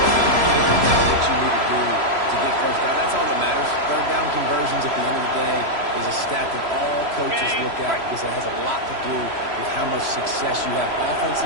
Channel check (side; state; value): left; late; 3.0 ms